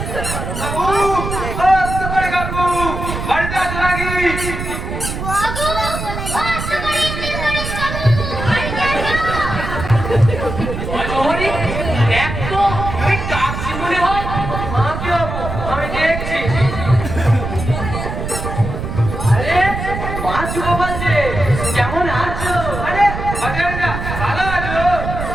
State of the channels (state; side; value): noise; right; rumble, 5 dB below the sound